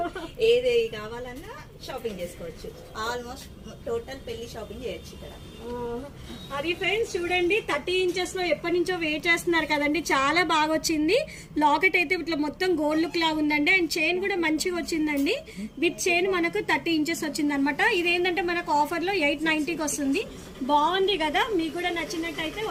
ఏది కావాలన్నా షాపింగ్ చేసుకోవచ్చు. ఆల్మోస్ట్ టోటల్ పెళ్లి షాపింగ్ చేయొచ్చు ఇక్కడ. అది ఫ్రెండ్స్ చూడండి, 30 ఇంచెస్ లో ఎప్పటి నుంచో వెయిట్ చేస్తున్నారు కదండి, చాలా బాగా వచ్చింది. లాకెట్ అయితే ఇట్లా మొత్తం గోల్డ్ లుక్ లాగా ఉందండి, అండ్ చైన్ కూడా మంచిగా వచ్చిందండి. విత్ చైన్ మనకు 30 ఇంచెస్ వచ్చింది అనమాట. ఇదేంటంటే మనకు ఆఫర్ లో 890కి వస్తుంది. బాగుంది కదా, మీకు కూడా నచ్చినట్టయితే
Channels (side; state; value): both; identical; correlation 1.00